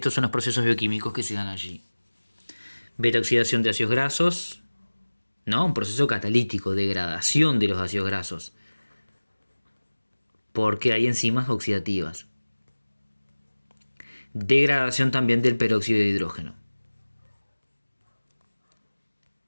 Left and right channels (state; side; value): inverted; both; correlation -1.00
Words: son los procesos bioquímicos que se dan allí. Beta-oxidación de ácidos grasos, ¿no? Un proceso catalítico, degradación de los ácidos grasos, porque hay enzimas oxidativas. Degradación también del peróxido de hidrógeno.